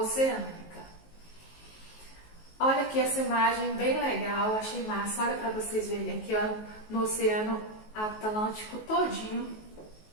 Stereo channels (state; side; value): late; right; 19 ms